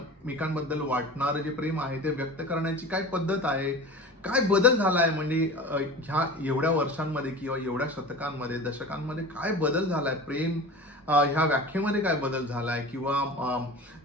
वाटणारं जे प्रेम आहे ते व्यक्त करण्याची काय पद्धत आहे, काय बदल झालाय म्हणजे ह्या एवढ्या वर्षांमध्ये किंवा एवढ्या शतकांमध्ये दशकांमध्ये काय बदल झालाय, प्रेम ह्या व्याख्येमध्ये काय बदल झालाय किंवा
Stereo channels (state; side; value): normal; both; correlation 0.34